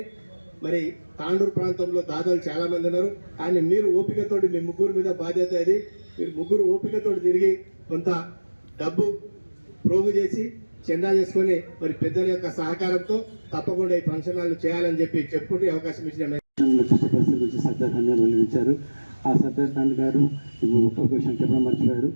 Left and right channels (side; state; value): both; inverted; correlation -1.00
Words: మరి తాండూరు ప్రాంతంలో దాదాలు చాలా మంది ఉన్నారు, కానీ మీరు ఓపికతోటి మీ ముగ్గురు మీద బాధ్యత ఇది, మీరు ముగ్గురు ఓపికతోటి తిరిగి కొంత డబ్బు ప్రోగు చేసి చందా చేసుకొని మరి పెద్దల యొక్క సహకారంతో తప్పకుండా ఈ ఫంక్షన్ హాల్ చేయాలని చెప్పి చెప్పుకుంటూ అవకాశం ఇచ్చిన గురించి సర్దార్ ఖాన్ గారు వెల్లడించారు. ఆ సర్దార్ ఖాన్ గారు ఒక విషయం చెప్పడం మర్చిపోయారు.